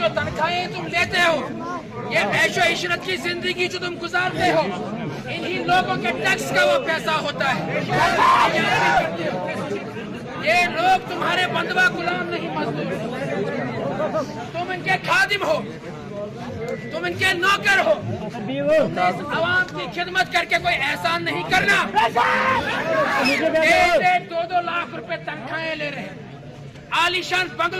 تنخواہیں تم لیتے ہو، یہ عیش و عشرت کی زندگی جو تم گزارتے ہو، انہی لوگوں کے ٹیکس کا وہ پیسہ ہوتا ہے۔ یہ لوگ تمہارے بندوا غلام نہیں، مزدور، تم ان کے خادم ہو، تم ان کے نوکر ہو۔ اس عوام کی خدمت کر کے کوئی احسان نہیں کرنا۔ 1-2 لاکھ روپے تنخواہیں لے رہے، عالیشان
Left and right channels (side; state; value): both; identical; correlation 1.00